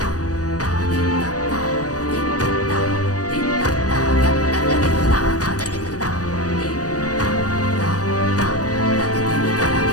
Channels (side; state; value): right; late; 0.67 ms